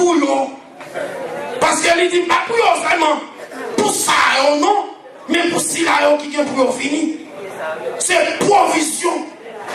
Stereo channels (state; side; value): identical; both; correlation 1.00